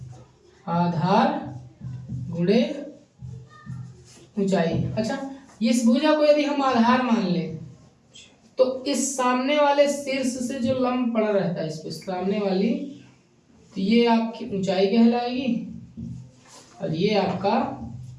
आधार गुणे ऊंचाई। अच्छा, इस भुजा को यदि हम आधार मान लें तो इस सामने वाले शीर्ष से जो लंब पड़ा रहता है इस पे सामने वाली, तो ये आपकी ऊंचाई कहलाएगी और ये आपका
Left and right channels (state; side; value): identical; both; correlation 1.00